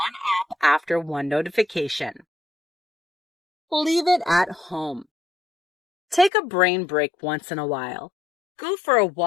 app after one notification. Leave it at home. Take a brain break once in a while. Go for a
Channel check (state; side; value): drops out; right; at 6.3 s